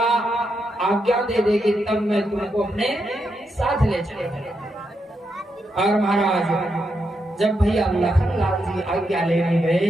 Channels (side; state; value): both; normal; correlation 0.83